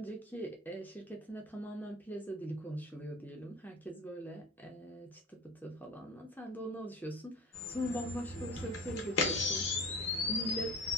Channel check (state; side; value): normal; both; correlation 0.36